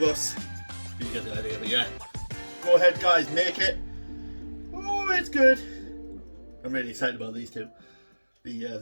us. You get the idea, but yeah. Go ahead guys, make it. Oh, it's good. I'm really excited about these two.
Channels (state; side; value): inverted; both; correlation -1.00